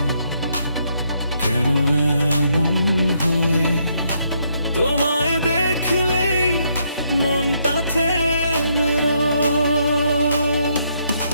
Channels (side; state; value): both; inverted; correlation -0.74